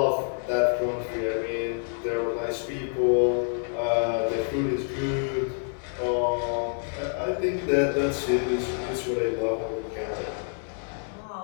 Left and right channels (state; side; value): silent; right; 55 dB below the other